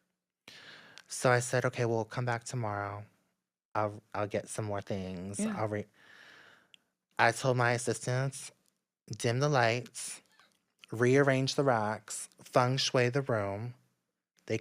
So I said, okay, well, come back tomorrow. I'll get some more things. Yeah. I told my assistants, dim the lights, rearrange the racks, feng shui the room. They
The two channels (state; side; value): identical; both; correlation 1.00